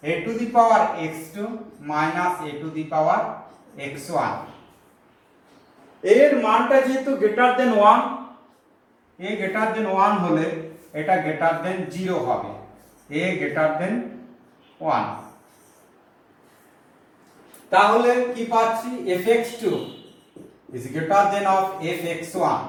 a to the power x2 minus a to the power x1। এর মানটা যেহেতু greater than 1, a greater than 1 হলে এটা greater than 0 হবে, a greater than 1। তাহলে কি পাচ্ছি fx2 is greater than of fx1।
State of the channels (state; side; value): identical; both; correlation 1.00